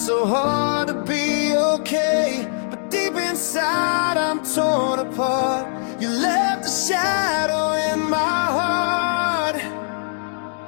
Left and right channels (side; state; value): right; silent; digital silence